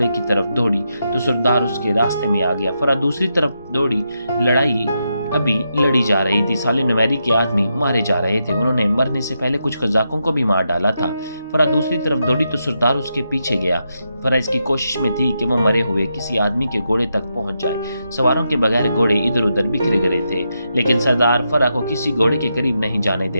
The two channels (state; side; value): inverted; both; correlation -0.84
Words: کی طرف دوڑی تو سردار اس کے راستے میں آ گیا۔ فرا دوسری طرف دوڑی۔ لڑائی ابھی لڑی جا رہی تھی۔ سالے نمیری کے آدمی مارے جا رہے تھے، انہوں نے مرنے سے پہلے کچھ قزاقوں کو بھی مار ڈالا تھا۔ فرا دوسری طرف دوڑی تو سردار اس کے پیچھے گیا۔ فرا اس کی کوشش میں تھی کہ وہ مرے ہوئے کسی آدمی کے گھوڑے تک پہنچ جائے۔ سواروں کے بغیر گھوڑے ادھر ادھر بکھرے گئے تھے، لیکن سردار فرا کو کسی گھوڑے کے قریب نہیں جانے